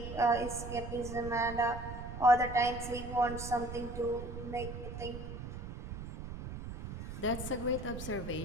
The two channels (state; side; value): noise; right; rumble, 8 dB below the sound